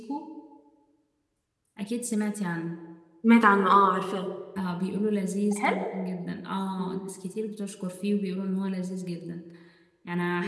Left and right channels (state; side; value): identical; both; correlation 1.00